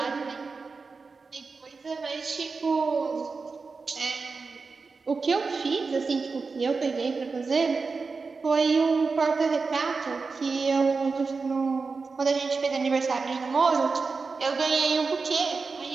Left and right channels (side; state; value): left; quieter; 4.5 dB